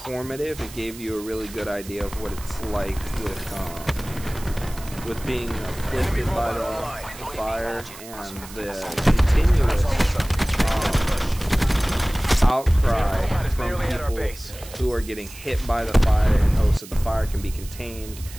It gave you a really good idea of what it's like with being afflicted by the fire and the continuous outcry from people who are getting hit by the fire in hopes that the fire can be contained,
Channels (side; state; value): right; noise; hiss, 17 dB below the sound